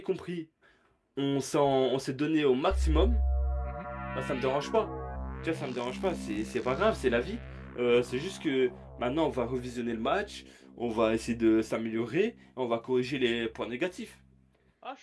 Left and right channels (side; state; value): both; identical; correlation 1.00